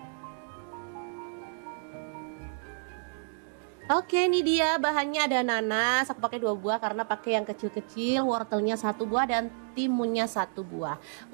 Oke, ini dia bahannya. Ada nanas, aku pakai 2 buah karena pakai yang kecil-kecil, wortelnya 1 buah dan timunnya 1 buah.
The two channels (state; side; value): silent; left; digital silence